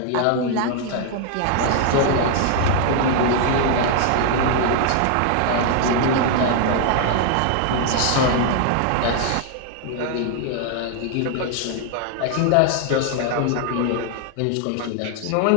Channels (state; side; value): different; both; correlation 0.00